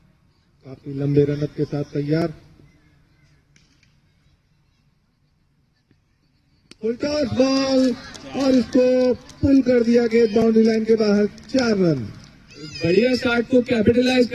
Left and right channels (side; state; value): both; identical; correlation 1.00